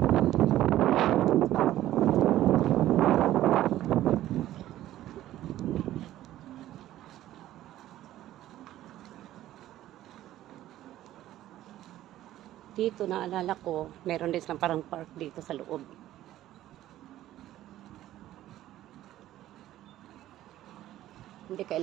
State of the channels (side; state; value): left; quieter; 13.8 dB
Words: Dito, naalala ko, meron din silang parang park dito sa loob. Hindi